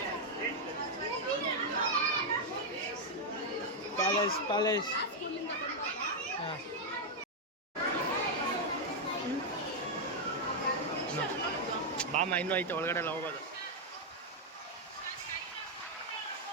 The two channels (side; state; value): both; normal; correlation -0.01